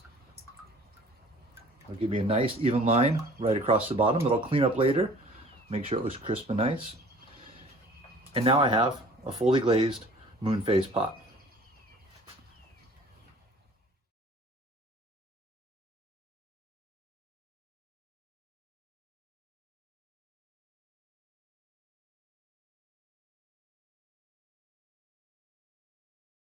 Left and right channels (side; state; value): both; normal; correlation 0.49